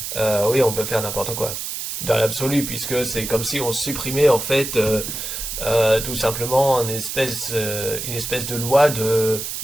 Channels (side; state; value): right; noise; hiss, 5 dB below the sound